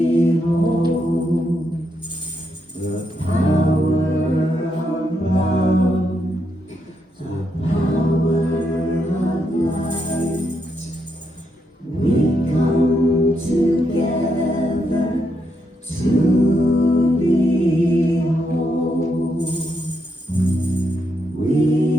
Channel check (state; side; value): normal; both; correlation 0.80